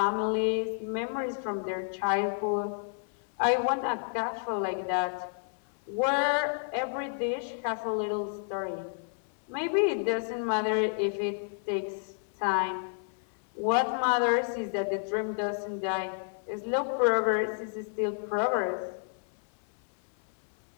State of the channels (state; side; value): silent; right; 57 dB below the other